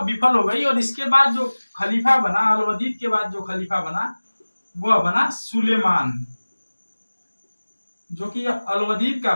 विफल हो गई। और इसके बाद जो खलीफा बना, अलवदीद के बाद जो खलीफा बना वह बना सुलेमान, जो कि अलवदीद का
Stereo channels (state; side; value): inverted; both; correlation -1.00